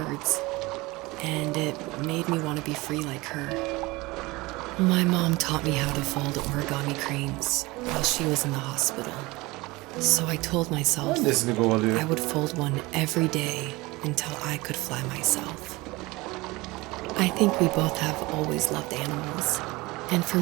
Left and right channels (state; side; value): quieter; left; 22.1 dB